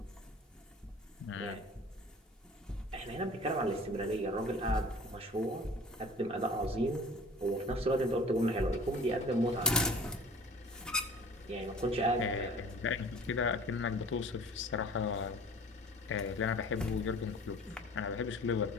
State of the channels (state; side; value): normal; both; correlation 0.44